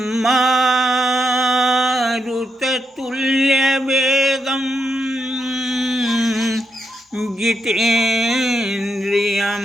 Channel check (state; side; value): normal; both; correlation 0.81